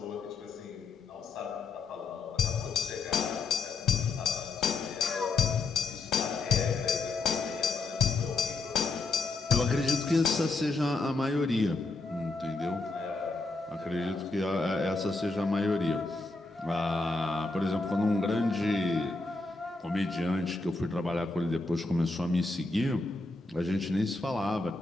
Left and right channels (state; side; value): quieter; right; 3.5 dB